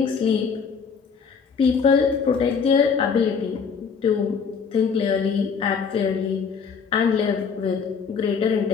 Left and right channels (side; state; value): right; quieter; 6.0 dB